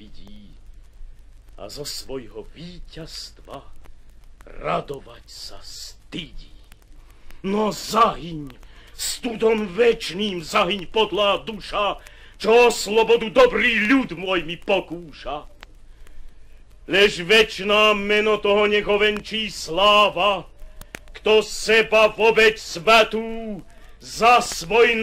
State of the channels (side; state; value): both; identical; correlation 1.00